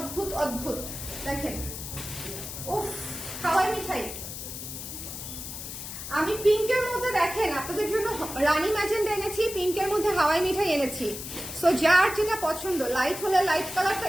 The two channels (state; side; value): noise; left; hiss, 8 dB below the sound